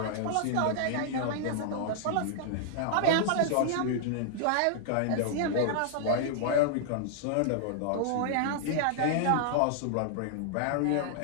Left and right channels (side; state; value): both; different; correlation -0.01